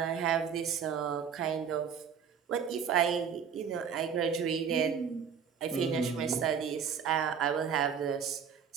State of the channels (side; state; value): left; quieter; 7.2 dB